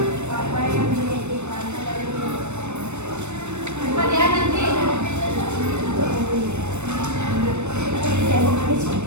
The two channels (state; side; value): late; left; 0.82 ms